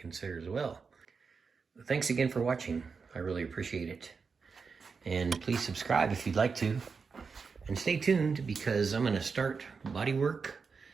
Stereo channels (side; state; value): left; quieter; 5.2 dB